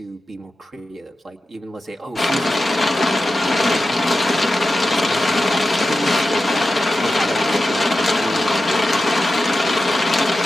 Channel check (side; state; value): both; normal; correlation 0.92